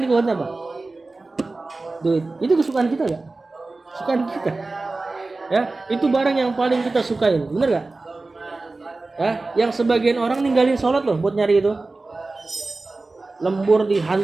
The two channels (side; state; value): left; quieter; 3.4 dB